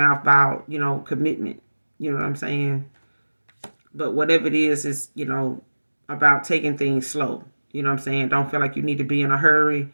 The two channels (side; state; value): both; inverted; correlation -1.00